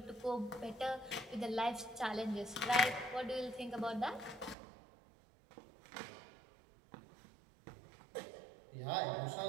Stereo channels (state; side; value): drops out; left; at 4.5 s